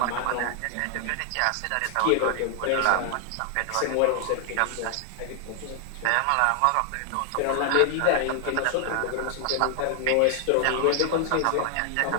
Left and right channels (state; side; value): different; both; correlation 0.00